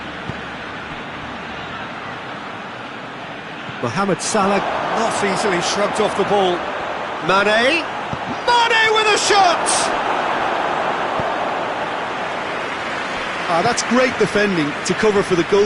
Mohamed Salah not easily shrugged off the ball. Mane. Mane with a shot! That's great defending to cover for the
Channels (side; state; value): both; identical; correlation 1.00